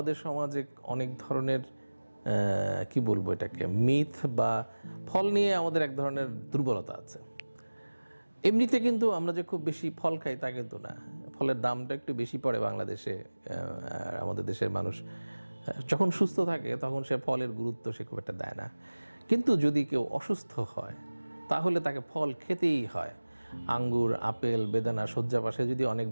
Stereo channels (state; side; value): inverted; both; correlation -1.00